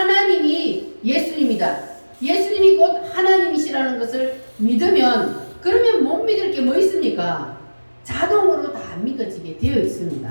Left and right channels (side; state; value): both; inverted; correlation -1.00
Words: 예수님이다. 예수님이 곧 하나님이시라는 것을 믿으면 그러면 못 믿을 게 뭐 있습니까? 자동으로 다 믿어지게 되어